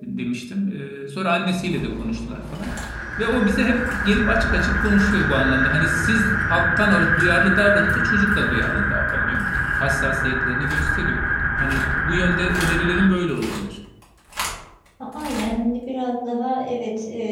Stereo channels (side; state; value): both; identical; correlation 1.00